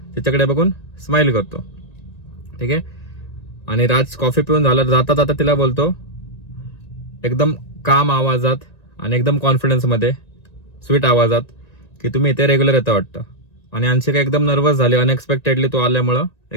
तिच्याकडे बघून स्माइल करतो. ठीक आहे. आणि राज कॉफी पिऊन झालं जाता जाता तिला बोलतो एकदम काम आवाजात आणि एकदम कॉन्फिडन्समध्ये स्वीट आवाजात की तुम्ही इथे रेग्युलर येता वाटतं. आणि अंशिका एकदम नर्वस झाली. अनएक्सपेक्टेडली तो आल्यामुळं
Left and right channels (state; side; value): late; right; 1.9 ms